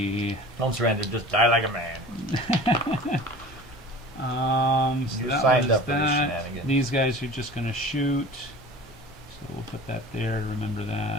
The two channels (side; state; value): both; normal; correlation 0.39